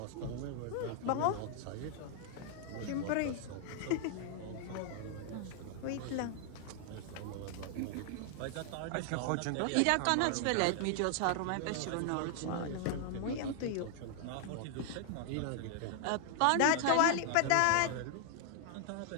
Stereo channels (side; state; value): both; different; correlation 0.00